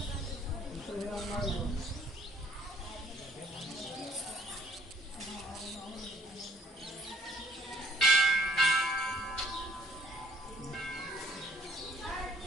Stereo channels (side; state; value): both; normal; correlation 0.61